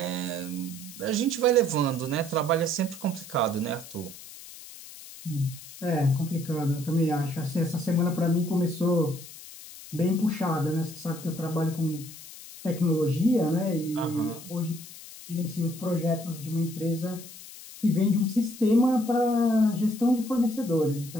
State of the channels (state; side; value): noise; left; hiss, 16 dB below the sound